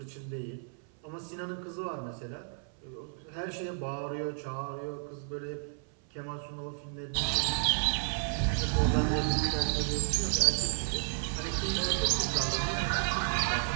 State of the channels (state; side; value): silent; left; 56 dB below the other